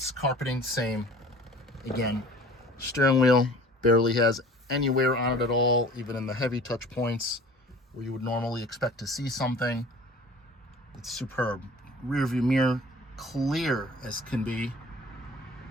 carpeting, same. Again, steering wheel barely has any wear on it at all, even in the heavy touch points where you would normally expect to see something. It's superb. Rear view mirror, clear as can be,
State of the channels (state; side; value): normal; both; correlation 0.46